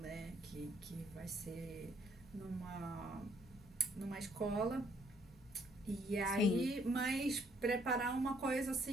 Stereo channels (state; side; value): normal; both; correlation 0.67